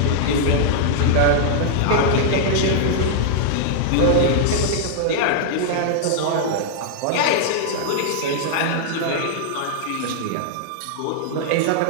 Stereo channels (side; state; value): both; different; correlation -0.01